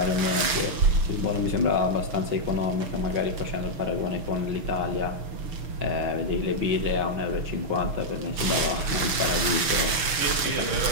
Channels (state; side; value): late; left; 6.8 ms